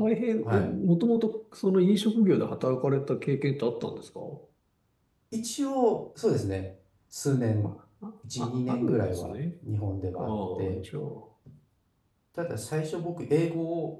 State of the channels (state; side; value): identical; both; correlation 1.00